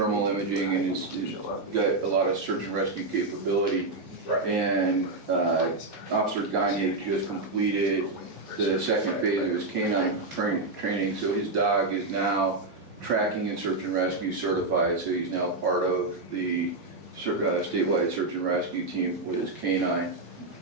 imaging and has got a lot of search and rescue capability. Right. And Officer Gagne just completed the second phase of his canine training, so his dog is now tracking and search and rescue certified, so he's now part of the statewide search and rescue team with his canine.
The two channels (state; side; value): quieter; left; 3.2 dB